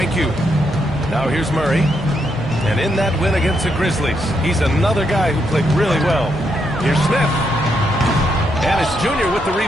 you. Now here's Murray. And in that win against the Grizzlies, he's another guy who played really well. Here's Smith. And it's Junior with the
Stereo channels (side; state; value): both; normal; correlation 0.79